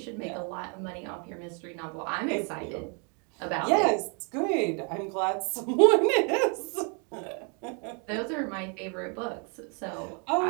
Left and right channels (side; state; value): left; quieter; 37.6 dB